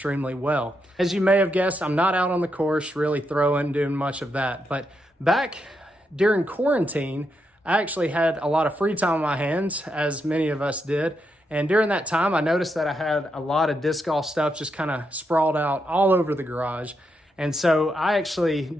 well. As you may have guessed, I'm not out on the course, really throwing, doing much of that. But back during quarantine, I actually had a lot of free time on my hands, as many of us did. And during that time, I noticed that I had a lot of disc golf stuff just kind of sprawled out all over the garage. And so I actually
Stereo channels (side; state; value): both; normal; correlation 0.82